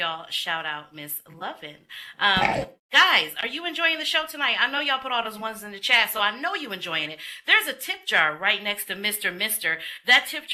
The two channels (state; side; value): identical; both; correlation 1.00